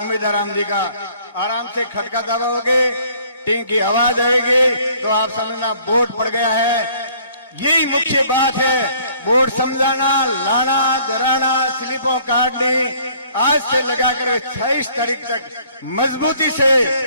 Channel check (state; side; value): inverted; both; correlation -0.59